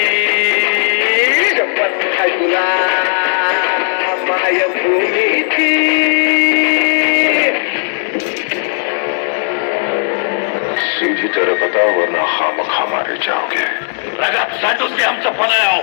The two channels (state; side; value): silent; right; 64 dB below the other